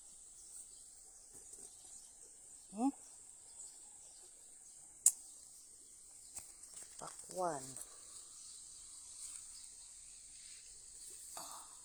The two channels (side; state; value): both; identical; correlation 1.00